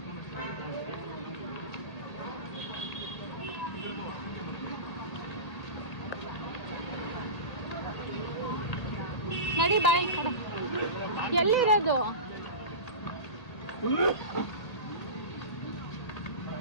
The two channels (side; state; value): right; late; 1.8 ms